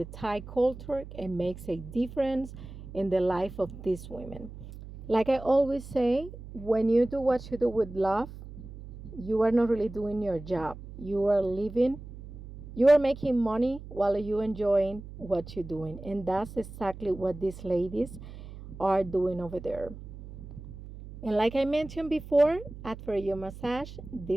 Thai culture and makes a difference in the life of these women. Like I always say, when you do what you do with love, you are not really doing your job. You are living, you are making money while you enjoying what you're doing. And that's exactly what these ladies are doing over there. And like I mentioned before, after your massage,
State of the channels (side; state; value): right; noise; hum, 14 dB below the sound